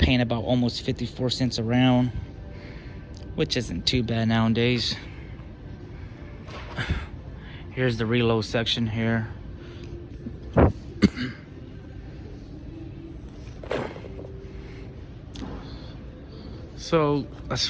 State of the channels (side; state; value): both; identical; correlation 1.00